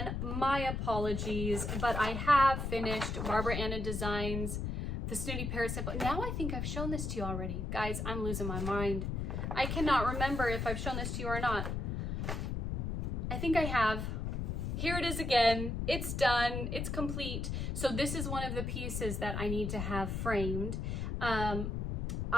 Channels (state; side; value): noise; left; rumble, 2 dB below the sound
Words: my apologies, but I have finished Barbara Anna Designs, the Snooty Parrot Sample. Now I think I've shown this to you already. Guys, I'm losing my mind. I cannot remember if I've shown this to you or not. I think I have. Here it is again. It's done. It's complete. So this is one of the pieces that I need to have framed.